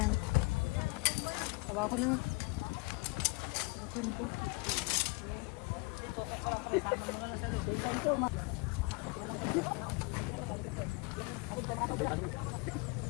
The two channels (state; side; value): quieter; right; 28.3 dB